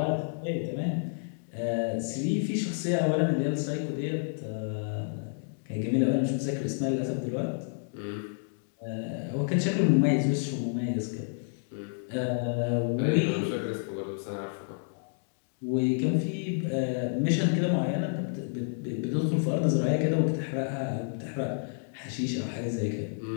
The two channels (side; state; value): right; silent; digital silence